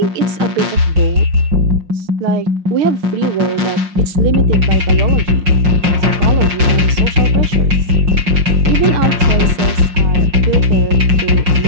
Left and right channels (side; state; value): left; late; 5.6 ms